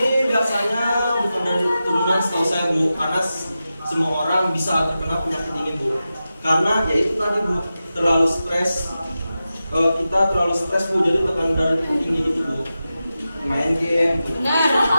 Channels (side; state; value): both; inverted; correlation -0.92